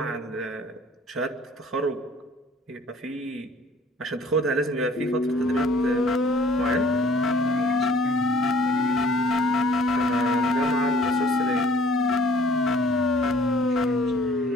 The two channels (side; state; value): both; normal; correlation 0.55